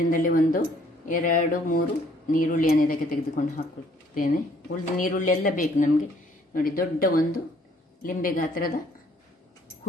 1, 2, 3 ನೀರುಳ್ಳಿಯನ್ನು ಇದಕ್ಕೆ ತೆಗೆದುಕೊಂಡು ಹಾಕ್ಕೊಳ್ತೇನೆ. ಉಳಿದ ನೀರುಳ್ಳಿ ಎಲ್ಲ ಬೇಕು ನಮಗೆ. ನೋಡಿ, ದೊಡ್ಡ ಒಂದು ಲಿಂಬೆ ಗಾತ್ರದ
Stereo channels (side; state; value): both; normal; correlation 0.62